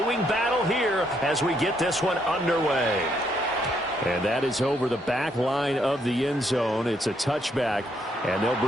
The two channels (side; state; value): both; normal; correlation 0.73